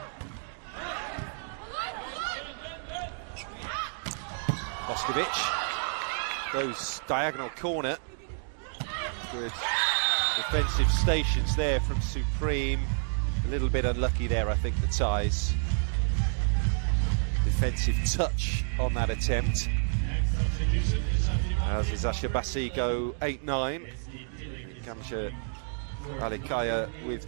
Boskovic goes diagonal corner. Good defensive stations there from Supreme. A little bit unlucky there, I think, the ties. Defensive touch on that attempt. As Eczacibasi go 8-9. Kamsha Alikaya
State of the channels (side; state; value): left; silent; digital silence